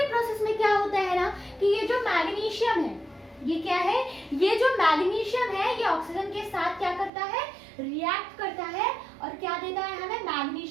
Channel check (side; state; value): left; drops out; at 7.1 s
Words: प्रोसेस में क्या होता है ना कि ये जो मैग्नीशियम है, ये क्या है, ये जो मैग्नीशियम है ये ऑक्सीजन के साथ क्या करता है, रिएक्ट करता है और क्या देता है हमें,